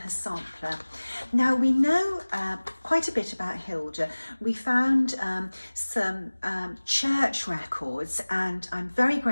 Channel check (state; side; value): inverted; both; correlation -1.00